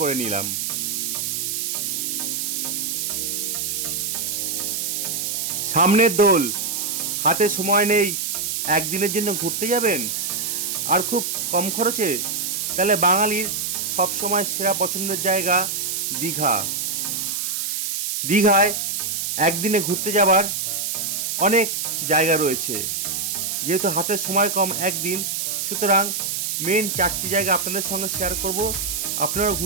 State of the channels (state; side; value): noise; right; hiss, 1 dB below the sound